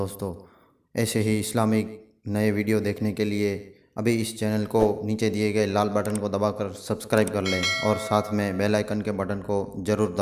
ایسے ہی اسلامک نئے ویڈیو دیکھنے کے لیے ابھی اس چینل کو نیچے دیے گئے لال بٹن کو دبا کر سبسکرائب کر لیں اور ساتھ میں بیل آئیکن کے بٹن کو ضرور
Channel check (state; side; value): identical; both; correlation 1.00